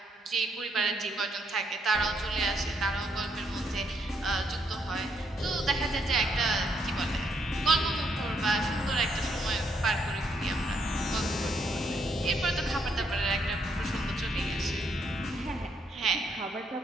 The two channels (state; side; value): normal; both; correlation 0.74